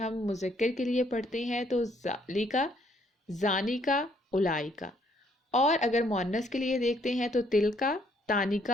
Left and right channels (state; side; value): normal; both; correlation 0.67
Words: مذکر کے لیے پڑھتے ہیں تو ذالکا، زانیکا، اولائکا، اور اگر مؤنث کے لیے دیکھتے ہیں تو تلکا،